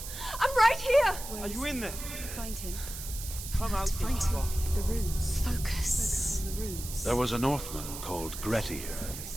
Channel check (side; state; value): right; noise; hiss, 9 dB below the sound